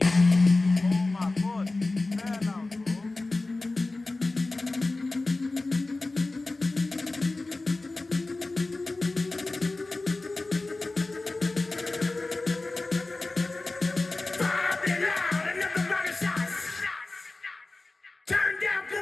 Oh my god, fair now, bro. Turn down for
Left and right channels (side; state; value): right; quieter; 3.2 dB